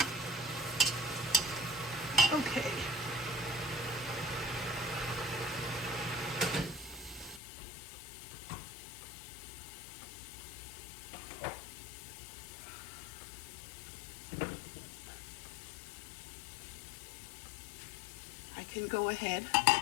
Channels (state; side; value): drops out; right; at 7.4 s